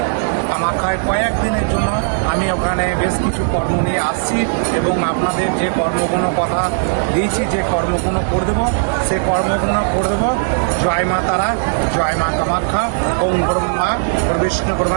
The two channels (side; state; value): left; silent; digital silence